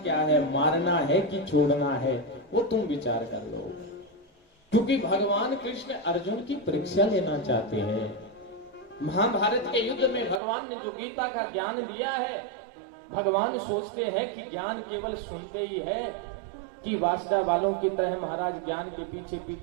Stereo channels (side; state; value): left; drops out; at 10.4 s